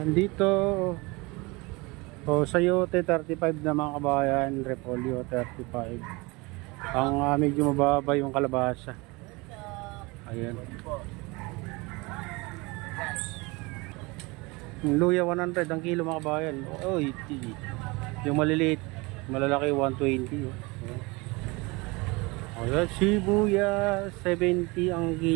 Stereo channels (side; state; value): left; quieter; 25.3 dB